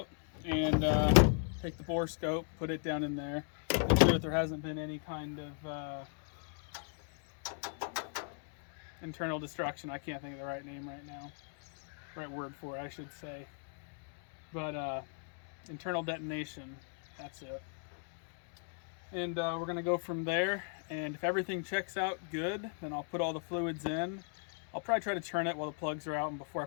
and take the bore scope, put it down in there, make sure that there hasn't been any kind of internal destruction. I can't think of the right name right now. Right word for it, I should say. But internal detonation, that's it. And we're gonna go from there, and if everything checks out good, then I'll put all the fluids in. I'll probably try to turn it while the plugs are out and before I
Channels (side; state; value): right; silent; 53 dB below the other